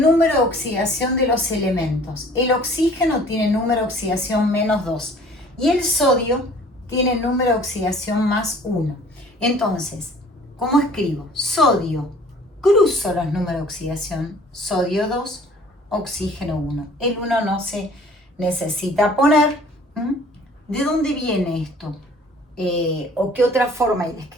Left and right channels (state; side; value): normal; both; correlation 0.52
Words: de oxidación de los elementos. El oxígeno tiene número de oxidación -2 y el sodio tiene número de oxidación +1. Entonces, ¿cómo escribo? Sodio, cruzo los números de oxidación, sodio 2, oxígeno 1. El 1 no se necesita poner. ¿De dónde viene esto? ¿O qué otra forma hay de